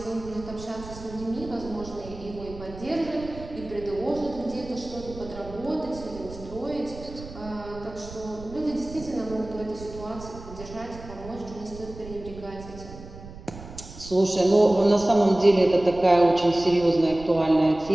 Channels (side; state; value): right; noise; rumble, 15 dB below the sound